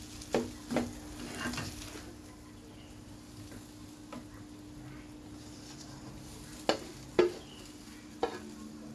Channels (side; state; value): both; identical; correlation 1.00